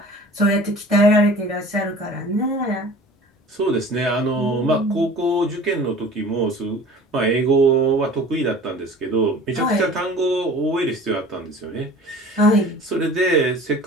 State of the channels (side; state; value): both; normal; correlation 0.43